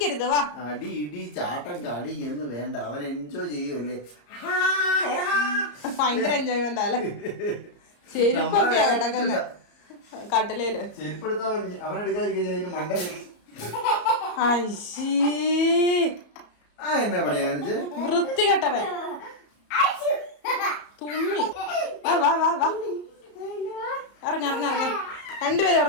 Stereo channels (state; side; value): late; right; 34 ms